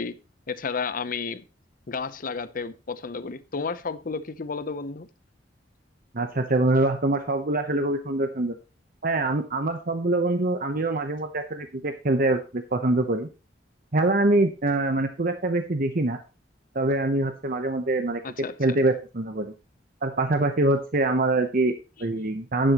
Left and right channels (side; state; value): both; normal; correlation 0.35